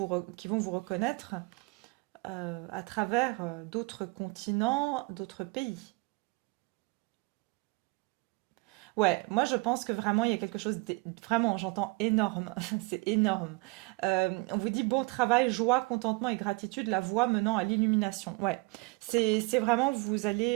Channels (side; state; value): left; quieter; 26.0 dB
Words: reconnaître à travers d'autres continents, d'autres pays. Ouais, moi je pense que vraiment il y a quelque chose vraiment, j'entends énorme, c'est énorme. On vous dit bon travail, joie, contentement et gratitude, la voie menant à l'illumination. Ouais, c'est vraiment vous